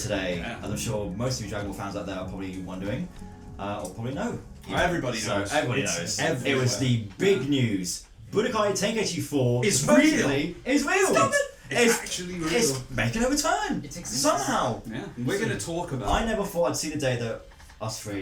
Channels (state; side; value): identical; both; correlation 1.00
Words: as I'm sure most of you Dragon Ball fans out there are probably wondering, or probably know. Everybody knows. Everybody knows. It was the big news. Budokai Tenkaichi 4 is real. Stop it! It's actually real. It's making a return. It exists. Somehow. Yeah. We're going to talk about I never thought I'd see the day that us